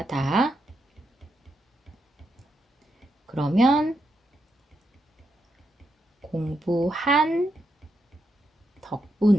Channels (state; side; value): normal; both; correlation 0.83